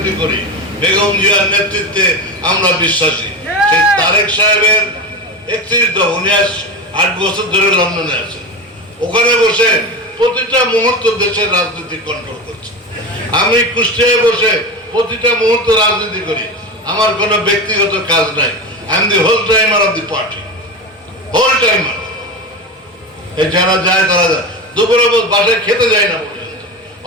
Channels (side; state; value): both; normal; correlation 0.22